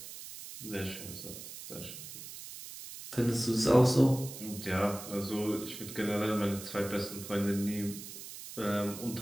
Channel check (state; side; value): noise; right; hiss, 12 dB below the sound